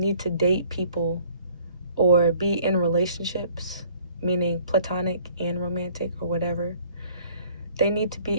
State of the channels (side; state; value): both; inverted; correlation -0.56